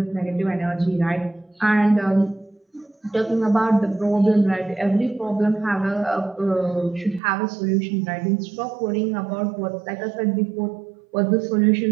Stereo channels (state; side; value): drops out; left; at 7.2 s